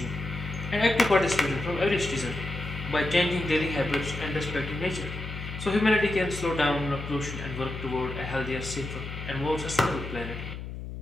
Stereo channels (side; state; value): left; noise; hum, 8 dB below the sound